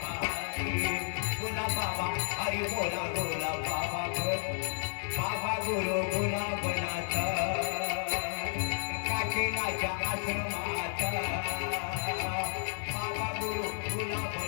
हरी बोला बाबा हरी बोला बोला बाबा बाबा गुरु गुलाबनाथ काशीनाथच्या आश्रमात बाबा गुरु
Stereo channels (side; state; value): right; silent; 56 dB below the other